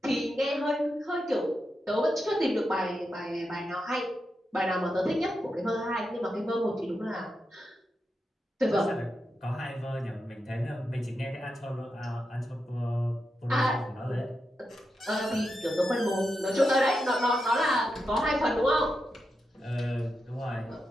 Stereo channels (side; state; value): both; normal; correlation 0.87